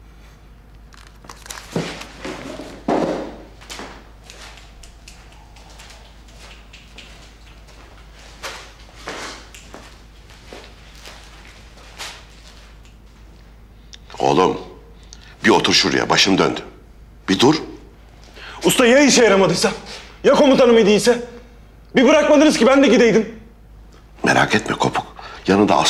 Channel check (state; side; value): identical; both; correlation 1.00